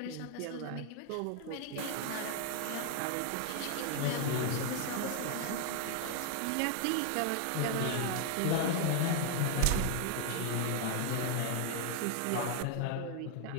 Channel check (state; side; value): different; both; correlation 0.00